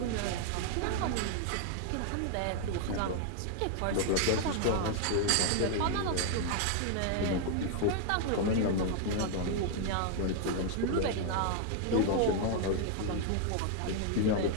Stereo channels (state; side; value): different; both; correlation 0.00